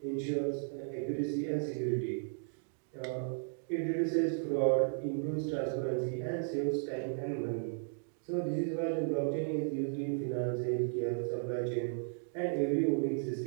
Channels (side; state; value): left; silent; digital silence